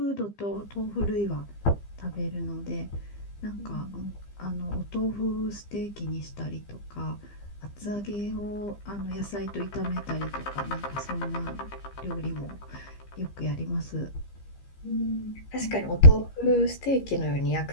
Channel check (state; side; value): late; right; 15 ms